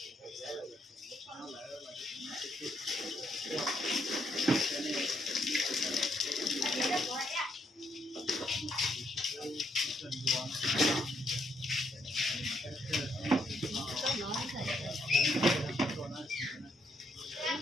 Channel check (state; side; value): normal; both; correlation 0.74